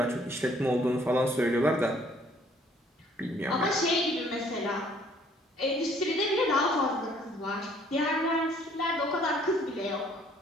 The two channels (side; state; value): both; normal; correlation 0.61